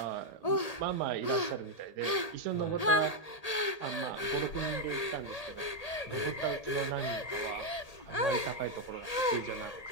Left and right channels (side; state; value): right; late; 1.8 ms